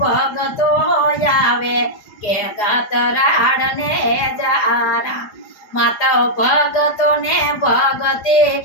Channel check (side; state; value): right; late; 4.9 ms